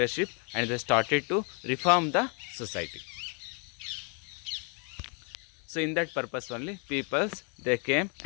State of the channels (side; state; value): right; quieter; 35.5 dB